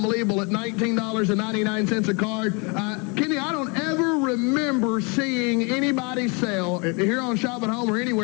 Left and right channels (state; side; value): quieter; right; 31.7 dB